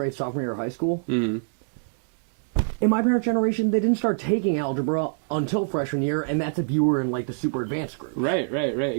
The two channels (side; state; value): left; silent; digital silence